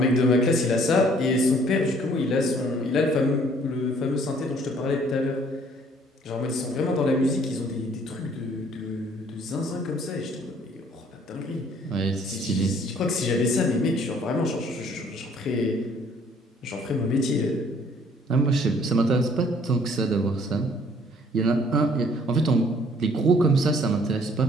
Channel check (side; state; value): both; normal; correlation 0.59